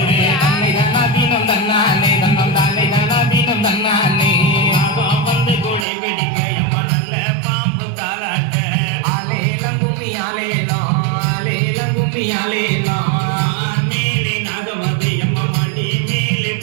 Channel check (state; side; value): drops out; left; at 5.9 s